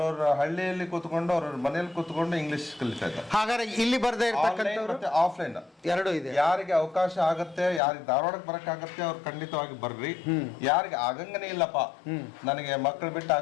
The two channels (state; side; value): drops out; right; at 7.8 s